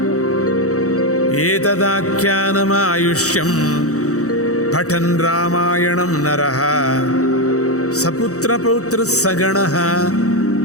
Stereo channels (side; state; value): right; late; 0.65 ms